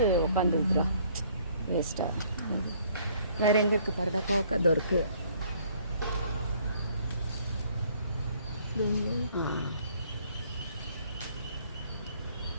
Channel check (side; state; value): both; inverted; correlation -0.61